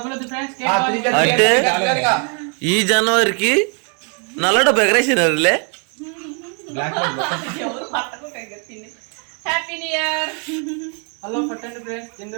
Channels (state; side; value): quieter; left; 38.6 dB